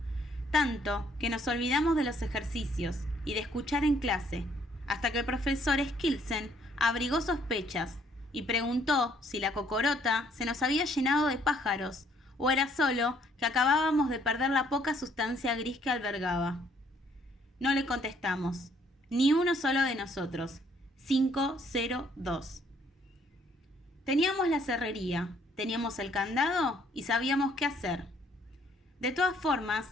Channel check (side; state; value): both; normal; correlation 0.65